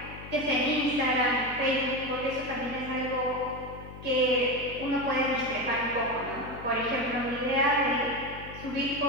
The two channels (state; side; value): noise; left; hum, 14 dB below the sound